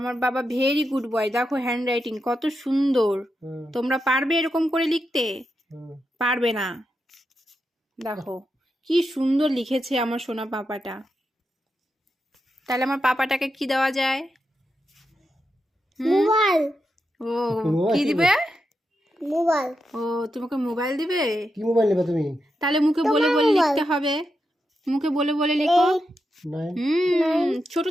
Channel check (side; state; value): both; normal; correlation 0.86